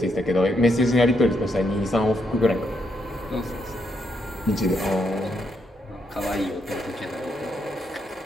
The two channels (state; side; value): normal; both; correlation 0.78